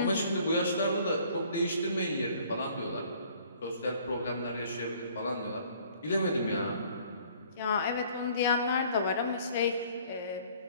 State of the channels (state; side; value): inverted; both; correlation -0.56